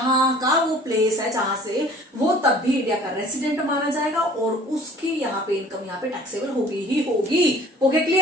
का वो प्लेस है जहां से वो, तब भी इंडिया का रेसिडेंट माना जाएगा और उसकी यहाँ पे इनकम यहाँ पे टैक्सेबल होगी ही होगी। Okay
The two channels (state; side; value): normal; both; correlation 0.50